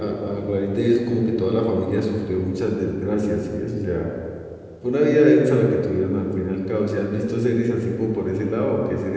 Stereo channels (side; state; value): both; identical; correlation 1.00